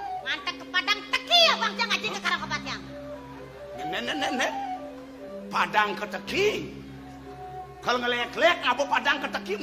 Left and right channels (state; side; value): identical; both; correlation 1.00